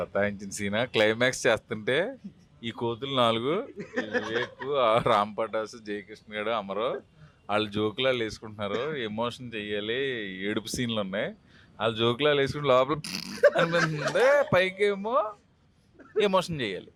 సీనా? క్లైమాక్స్ చేస్తుంటే ఈ కోతులు 4, వివేక్, రామ్ పటాసు, జయకృష్ణ గారు, అమరో వాళ్ళు జోకులాలు వేసుకుంటున్నారు. ఎమోషన్ చెయ్యాలి, ఏడుపు సీన్లు ఉన్నాయి. వాళ్ళు జోకులాలు వేసుకుంటే లోపల అనిపిస్తుంది, పైకేమో ఎమోషన్ చెయ్యాలి.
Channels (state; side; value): identical; both; correlation 1.00